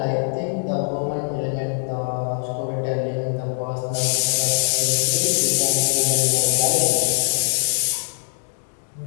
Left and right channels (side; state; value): right; silent; 59 dB below the other